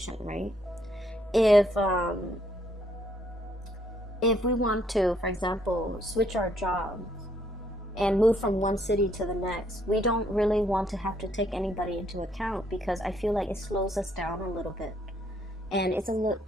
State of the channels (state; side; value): normal; both; correlation 0.69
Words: right? If we want to, for example, switch our jobs and move from one city to the next, we don't really want to have to take anybody into account, because I feel like it slows us down a little bit. And